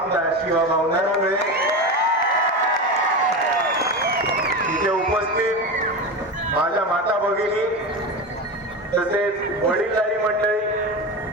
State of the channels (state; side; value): normal; both; correlation 0.22